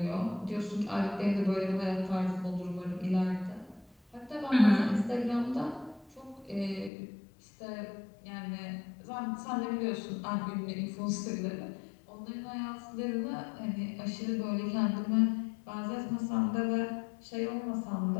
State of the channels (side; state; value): right; drops out; at 6.9 s